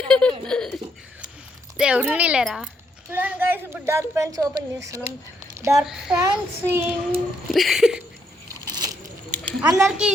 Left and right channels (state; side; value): normal; both; correlation 0.75